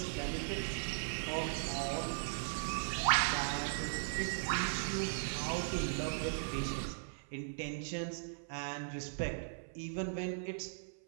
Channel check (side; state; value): left; silent; 52 dB below the other